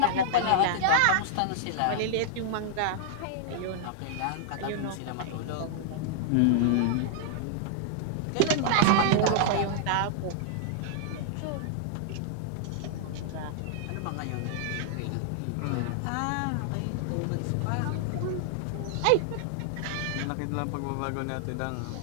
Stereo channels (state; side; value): different; both; correlation -0.01